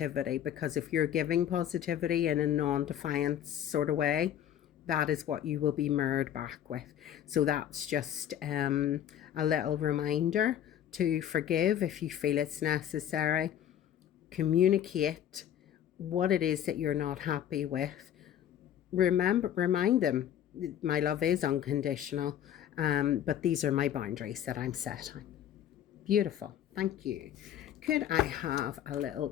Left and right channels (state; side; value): quieter; right; 10.5 dB